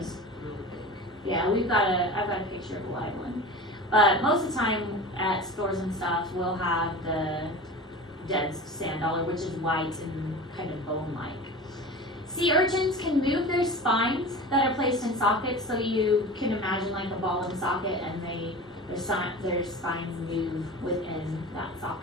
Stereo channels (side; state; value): both; normal; correlation 0.34